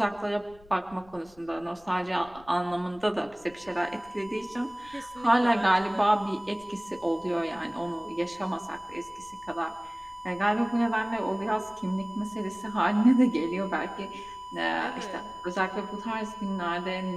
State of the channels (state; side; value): noise; left; rumble, 25 dB below the sound